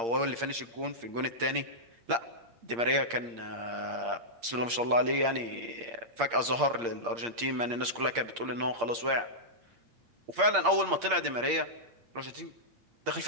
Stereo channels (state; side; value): late; left; 8.6 ms